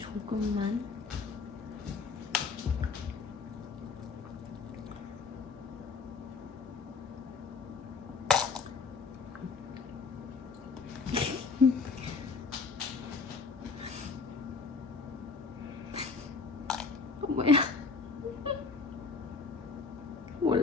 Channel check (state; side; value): quieter; right; 4.8 dB